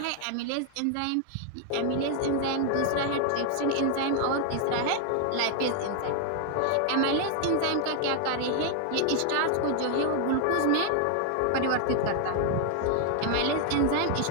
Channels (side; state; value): both; different; correlation 0.00